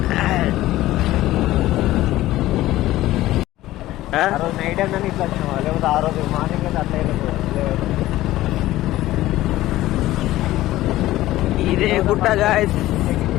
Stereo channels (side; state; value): right; quieter; 15.9 dB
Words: నైట్ అన్నీ ఇట్లా వచ్చినావా, లేకపోతే ఆ రోజు మార్నింగ్ అయితే అట్లా ఇదే గుట్ట గాయస్.